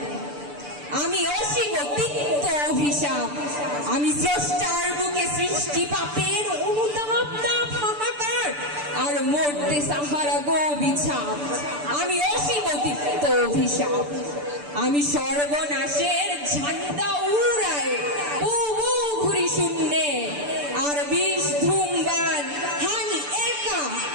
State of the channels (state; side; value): late; left; 6.8 ms